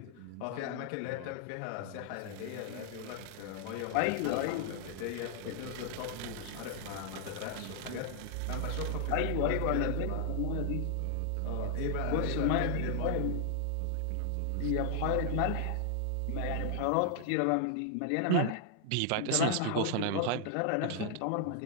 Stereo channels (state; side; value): different; both; correlation 0.00